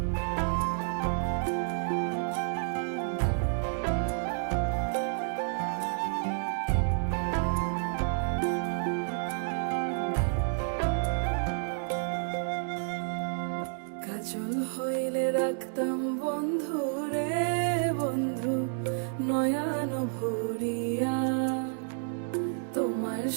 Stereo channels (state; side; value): silent; left; digital silence